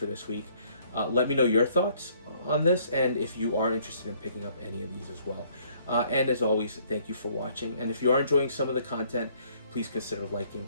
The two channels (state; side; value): inverted; both; correlation -0.63